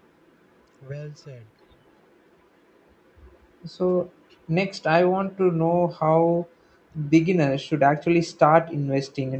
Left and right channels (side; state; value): both; identical; correlation 1.00